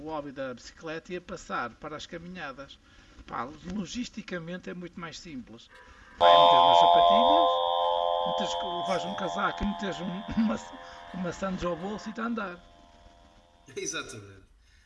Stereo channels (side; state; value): both; identical; correlation 1.00